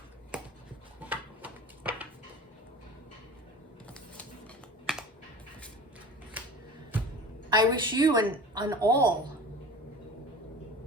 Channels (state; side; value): normal; both; correlation 0.38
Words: I wish you and all